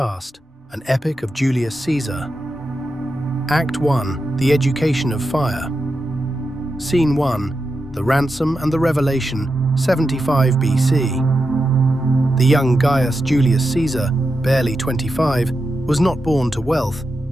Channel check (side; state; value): both; normal; correlation 0.88